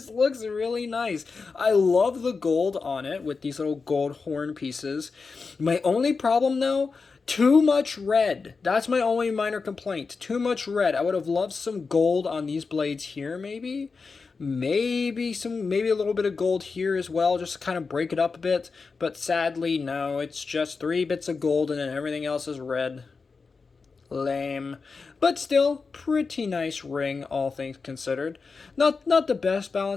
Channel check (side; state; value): right; quieter; 4.6 dB